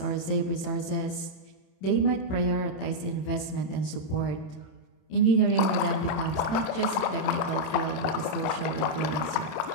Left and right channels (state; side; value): late; right; 27 ms